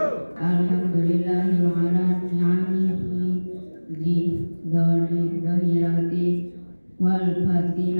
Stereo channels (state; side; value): inverted; both; correlation -1.00